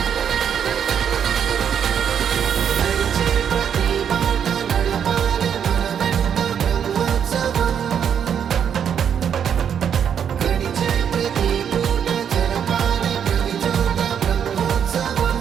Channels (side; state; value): left; quieter; 8.2 dB